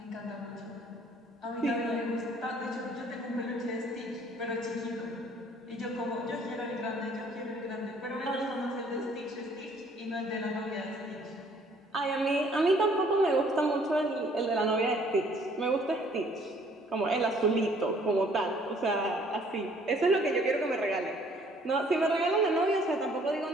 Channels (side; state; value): both; normal; correlation 0.60